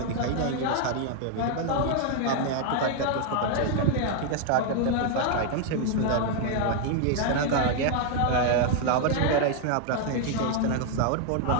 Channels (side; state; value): both; different; correlation 0.00